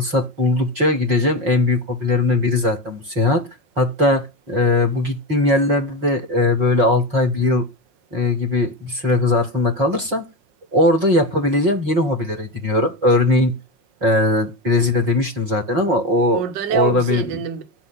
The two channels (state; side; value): late; left; 4.8 ms